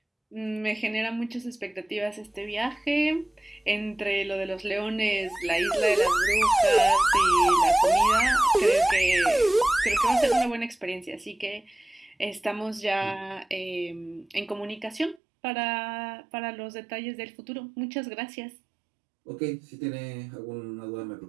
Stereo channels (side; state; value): left; drops out; at 15.2 s